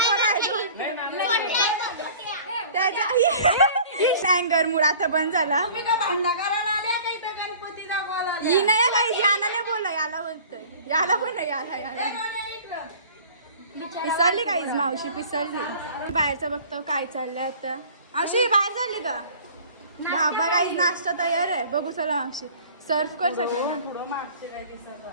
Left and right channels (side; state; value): both; inverted; correlation -0.47